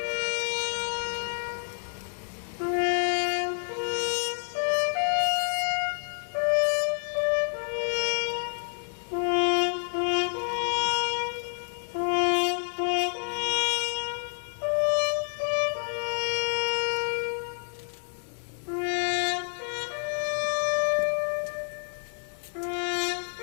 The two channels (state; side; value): silent; right; 55 dB below the other